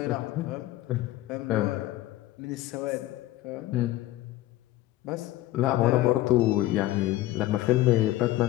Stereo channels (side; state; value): right; quieter; 15.8 dB